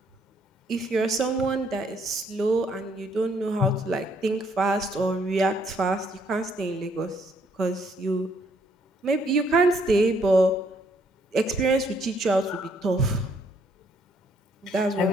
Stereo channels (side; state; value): both; normal; correlation 0.68